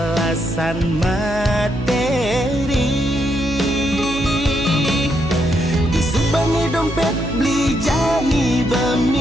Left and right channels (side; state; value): right; noise; hum, 11 dB below the sound